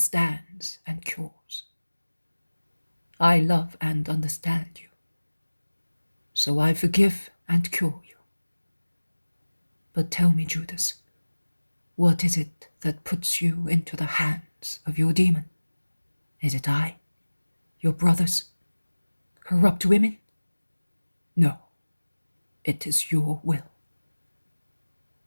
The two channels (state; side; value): inverted; both; correlation -1.00